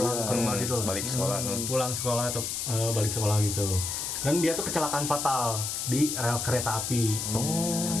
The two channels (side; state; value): left; noise; hiss, 3 dB below the sound